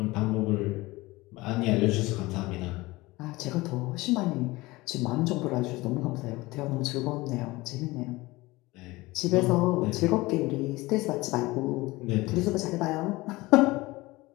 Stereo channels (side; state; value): right; quieter; 21.0 dB